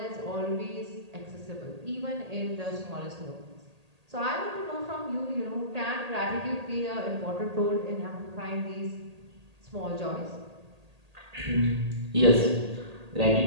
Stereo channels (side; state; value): left; late; 1.8 ms